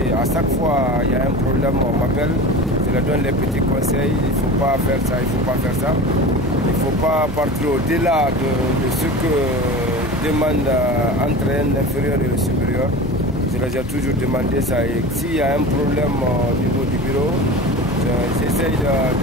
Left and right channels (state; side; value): noise; left; hum, 12 dB below the sound